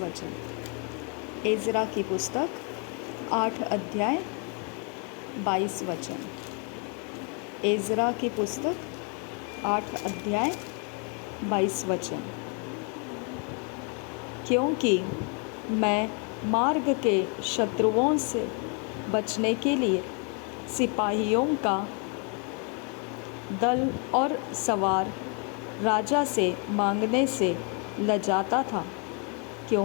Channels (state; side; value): quieter; right; 37.9 dB